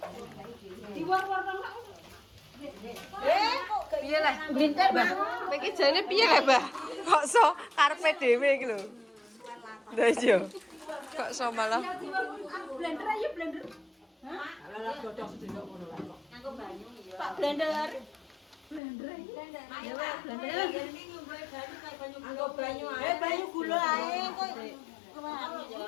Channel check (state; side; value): drops out; right; at 18.8 s